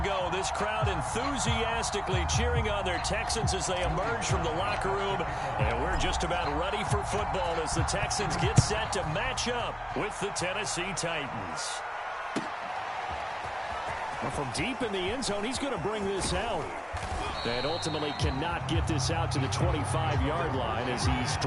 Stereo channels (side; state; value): both; identical; correlation 1.00